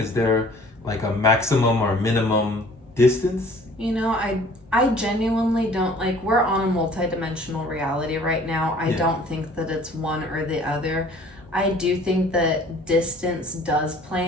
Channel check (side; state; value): both; normal; correlation 0.52